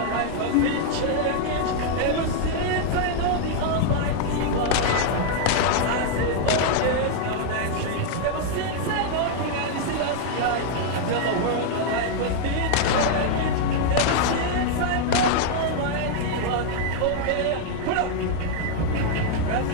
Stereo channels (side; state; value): both; different; correlation 0.00